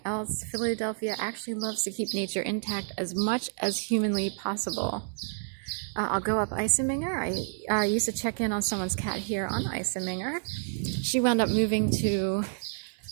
else. Philadelphia actually loves to keep nature intact as much as humanly possible. I'll go up Iseminger. I used to check in on someone's cat here on Iseminger. She wound up moving to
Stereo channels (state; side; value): silent; left; digital silence